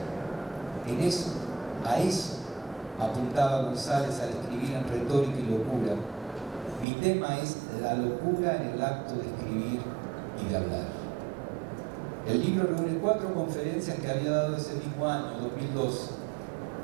A eso apuntaba González al escribir en Retórica y Locura. Mi tema es la locura en el acto de escribir y de hablar. El libro reúne 4 conferencias que había dado ese mismo año, 2002,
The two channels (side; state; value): left; drops out; at 6.9 s